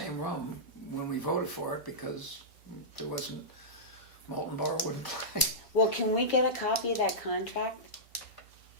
room when we voted for it because there wasn't, Molten Borough wouldn't play. Well, can we get a copy of that contract?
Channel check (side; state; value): both; normal; correlation -0.15